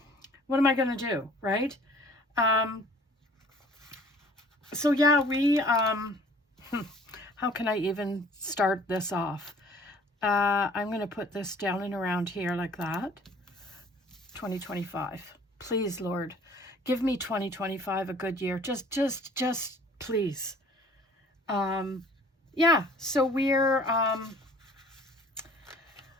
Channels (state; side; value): normal; both; correlation 0.53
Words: what am I going to do, right? So, yeah, we, how can I even start this off? I'm going to put this down and around here like that. 2025. Please, Lord, give me 2025 a good year. Just please. Yeah, so we're,